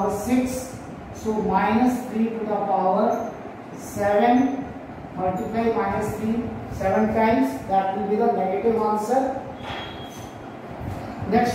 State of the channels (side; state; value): both; identical; correlation 1.00